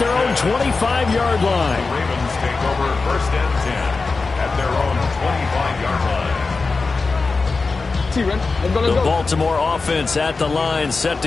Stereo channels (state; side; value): quieter; right; 4.1 dB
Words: own 25-yard line. The Ravens take over 1st and 10 at their own 25-yard line. The Baltimore offense at the line, set